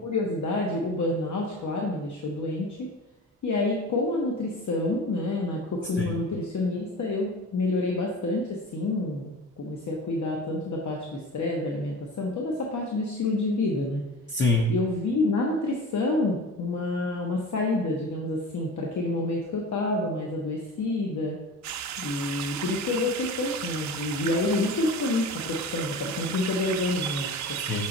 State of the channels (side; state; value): both; normal; correlation 0.35